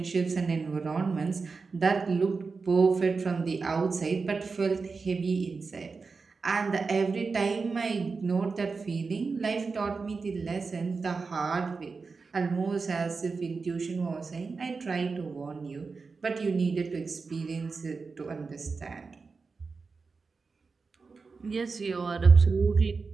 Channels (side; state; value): left; quieter; 4.5 dB